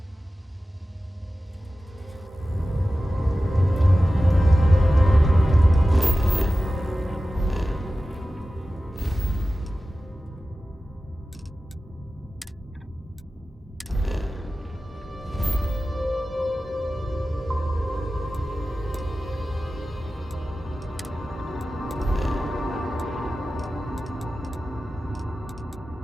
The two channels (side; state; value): both; normal; correlation 0.95